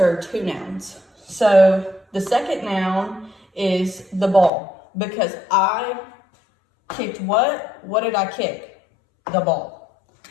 are two nouns. So the second noun is the ball. Because I kicked what? What did I kick? The ball.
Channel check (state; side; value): drops out; right; at 4.5 s